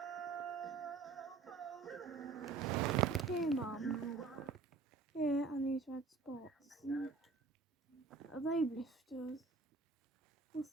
Hey, Mum. Here are these red spots. Are they blisters? What's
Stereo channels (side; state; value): left; quieter; 4.4 dB